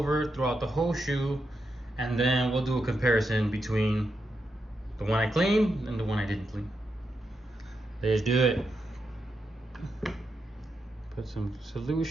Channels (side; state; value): both; normal; correlation 0.85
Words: throughout the whole shoe, and then we'll do a comparison between the one I cleaned and the one I didn't clean. Let's do it. Put some